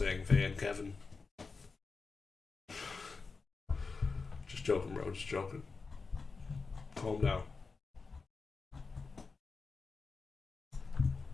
fan, Kevin. joking, bro. Just joking. Calm down.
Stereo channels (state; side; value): quieter; right; 4.4 dB